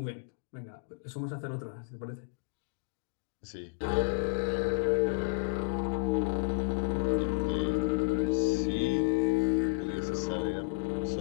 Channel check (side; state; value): right; silent; 57 dB below the other